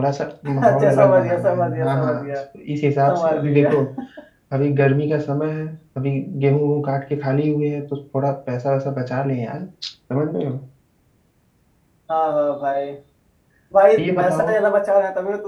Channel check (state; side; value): identical; both; correlation 1.00